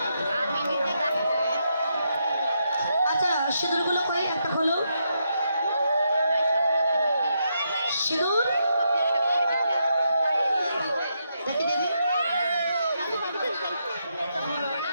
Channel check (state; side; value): inverted; both; correlation -0.81